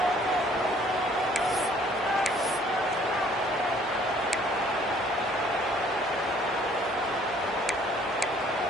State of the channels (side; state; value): both; normal; correlation 0.59